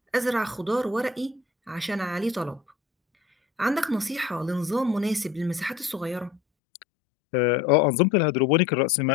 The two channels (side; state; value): right; drops out; at 6.4 s